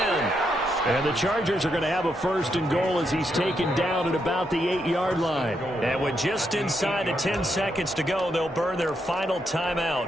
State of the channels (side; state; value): both; normal; correlation 0.80